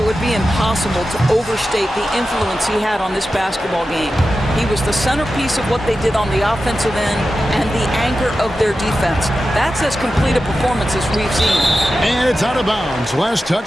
would be impossible to overstate the influence he had on this basketball game. He was the centerpiece of what they did on the offensive end and the anchor of their defense. That's as complete a performance as we've seen. And it's out of bounds. Last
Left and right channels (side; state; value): both; normal; correlation 0.92